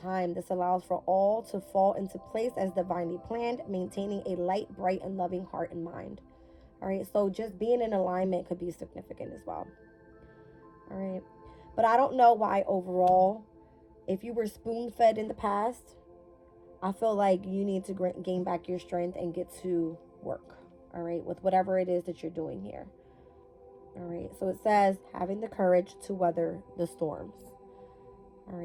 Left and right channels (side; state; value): both; identical; correlation 1.00